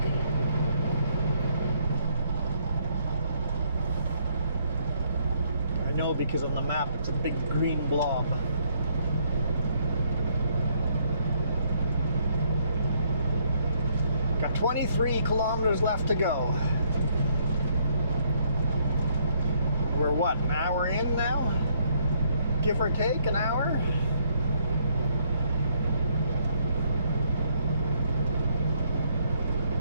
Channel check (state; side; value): inverted; both; correlation -0.70